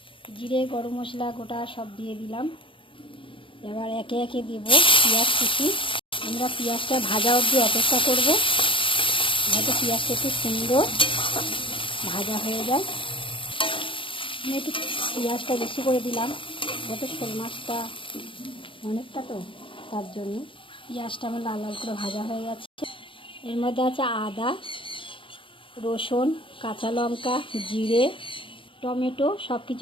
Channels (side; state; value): right; late; 0.25 ms